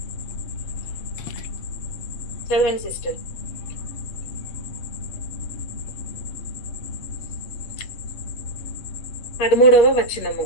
చదవండి సిస్టర్. పదమూడవ వచనము,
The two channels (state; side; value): late; right; 8.1 ms